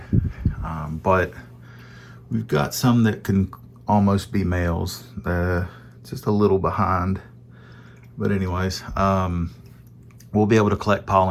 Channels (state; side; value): identical; both; correlation 1.00